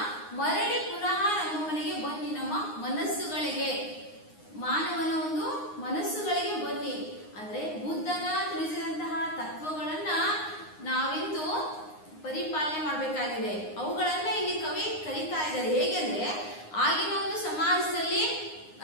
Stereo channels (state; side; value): late; right; 9.7 ms